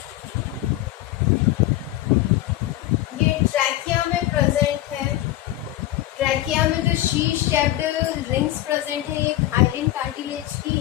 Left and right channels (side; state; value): right; quieter; 15.1 dB